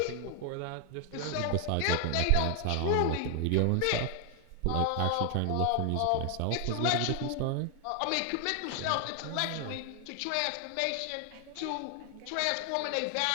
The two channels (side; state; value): both; different; correlation 0.00